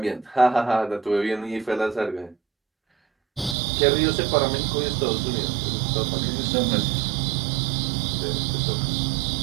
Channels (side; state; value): left; drops out; at 3.6 s